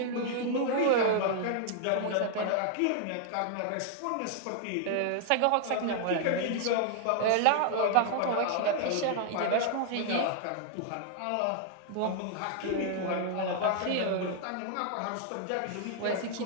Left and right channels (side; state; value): both; different; correlation 0.00